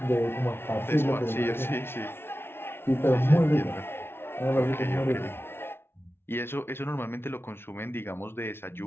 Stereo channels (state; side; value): late; right; 0.11 ms